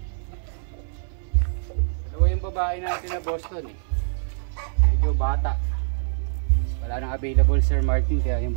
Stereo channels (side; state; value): left; silent; digital silence